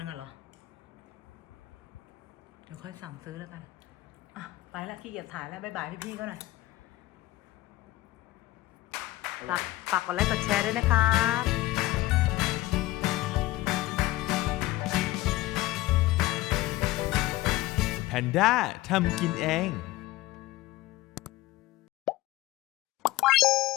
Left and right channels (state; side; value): quieter; right; 17.6 dB